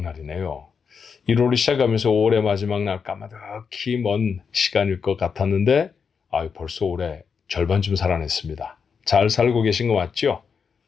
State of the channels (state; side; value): quieter; right; 6.1 dB